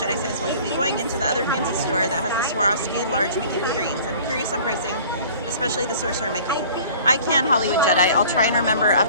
says, will you be going into the other fancy store that has the Swarovski large Mickey figurines? I'm curious on pricing, especially the Sorcerer Mickey. I can, Hollywood Jedi. I'll try and remember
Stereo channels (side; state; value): both; inverted; correlation -0.47